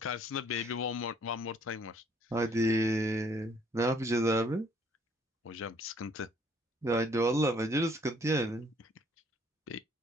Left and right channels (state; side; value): normal; both; correlation 0.62